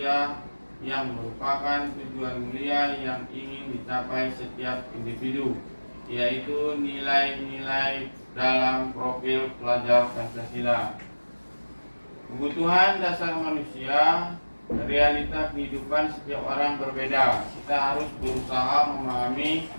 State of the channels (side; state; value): both; inverted; correlation -1.00